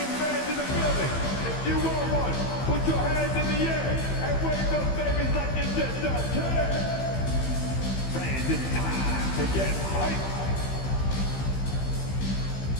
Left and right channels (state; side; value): late; right; 15 ms